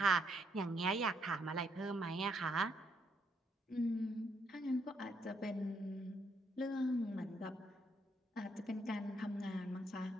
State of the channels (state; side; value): normal; both; correlation 0.73